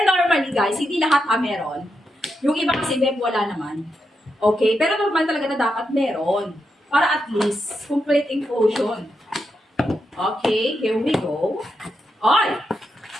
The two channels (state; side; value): normal; both; correlation 0.85